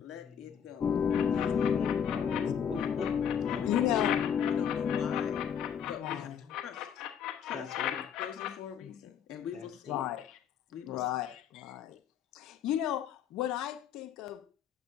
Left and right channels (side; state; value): right; quieter; 8.2 dB